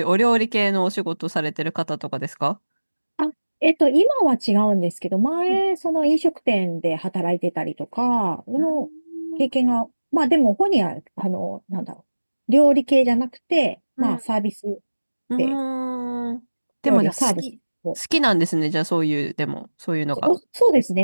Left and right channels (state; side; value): inverted; both; correlation -1.00